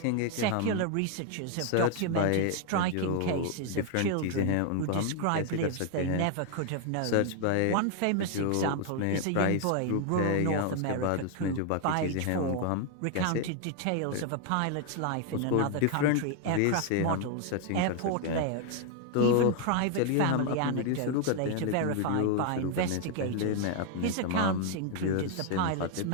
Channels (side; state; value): both; different; correlation 0.00